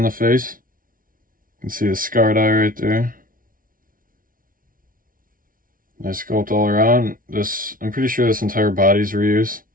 the face. You can see the scarred eye right there. Nice sculpt all around. I'm pretty sure this entire body's reuse.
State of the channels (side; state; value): left; late; 0.40 ms